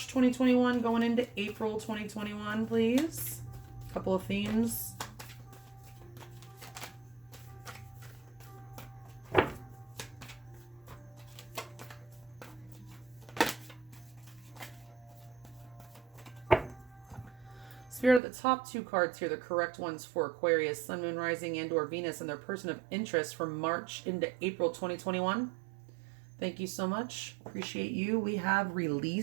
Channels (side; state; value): left; drops out; at 18.2 s